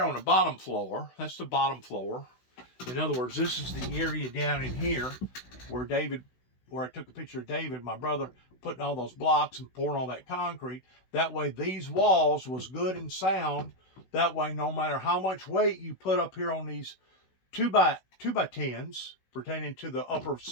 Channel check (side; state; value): right; late; 16 ms